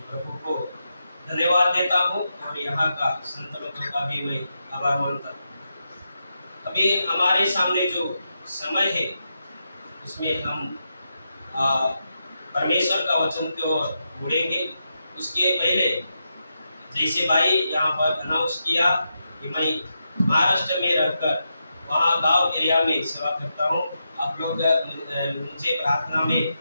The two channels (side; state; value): both; inverted; correlation -0.86